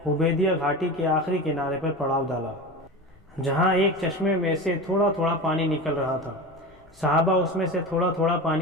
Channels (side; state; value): left; noise; rumble, 29 dB below the sound